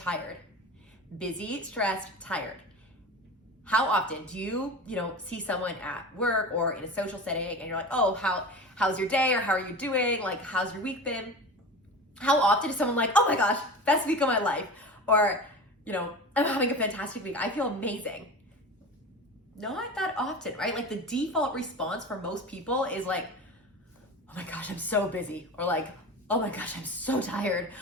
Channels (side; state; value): both; normal; correlation 0.31